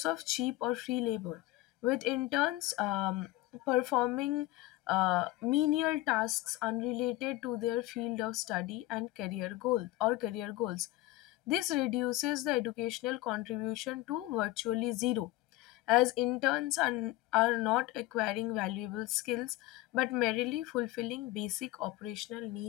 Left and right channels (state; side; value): quieter; right; 17.5 dB